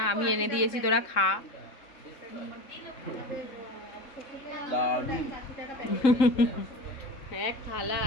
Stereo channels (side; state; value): right; late; 3.7 ms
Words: আমি এনে দিয়েছি তোরা খা। এক থালা,